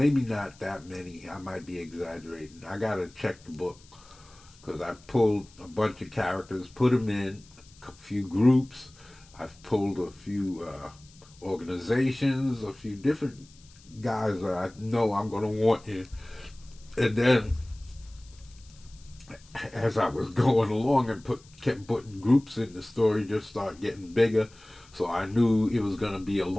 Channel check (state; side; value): noise; left; hiss, 26 dB below the sound